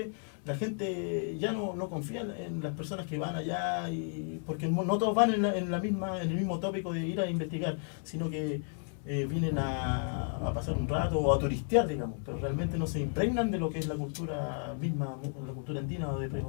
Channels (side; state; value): right; silent; 56 dB below the other